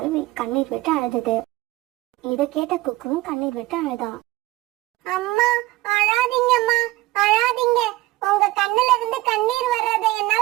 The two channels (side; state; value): left; quieter; 18.5 dB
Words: கண்ணீர் விட்டு அழுதுது. இத கேட்ட குக்குவும் கண்ணீர் விட்டு அழுதான். அம்மா அழாதீங்கம்மா, அழாதீங்க. உங்க கண்ணுல இருந்து கண்ணீர் வர்றதை